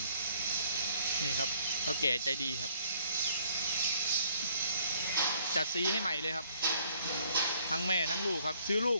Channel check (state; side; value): inverted; both; correlation -0.63